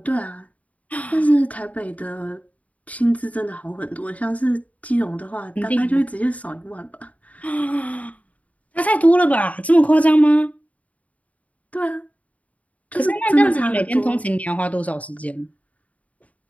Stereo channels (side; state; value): right; late; 0.069 ms